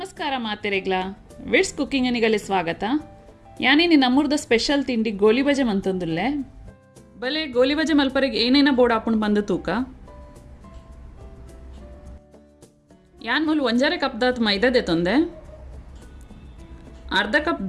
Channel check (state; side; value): identical; both; correlation 1.00